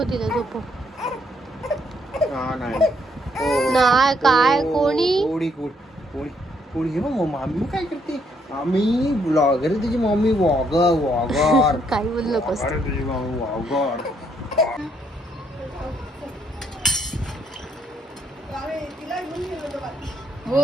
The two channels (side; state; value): both; normal; correlation 0.72